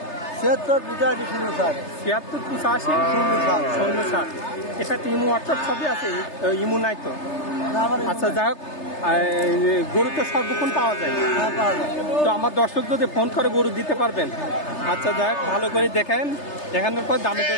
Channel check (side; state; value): right; late; 3.3 ms